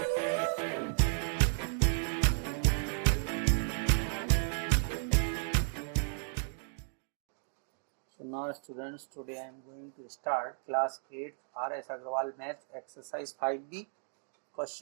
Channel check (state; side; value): silent; left; 55 dB below the other